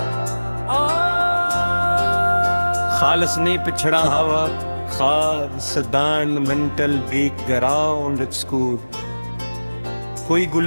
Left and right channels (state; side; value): inverted; both; correlation -1.00